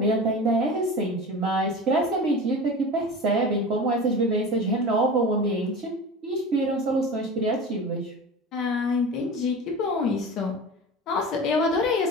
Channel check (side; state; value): both; normal; correlation 0.32